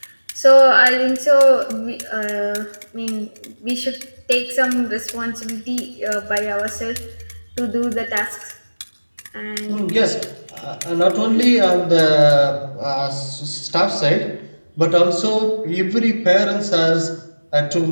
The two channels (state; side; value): inverted; both; correlation -1.00